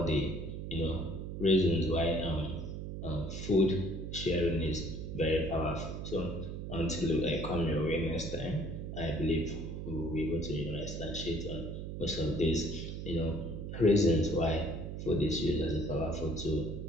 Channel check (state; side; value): noise; right; hum, 6 dB below the sound